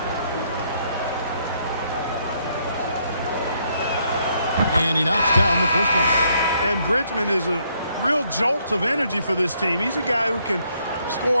And he knocks down the first one. And Bridgman is a real jolt of energy for this team. He's a guy who can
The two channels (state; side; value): inverted; both; correlation -0.71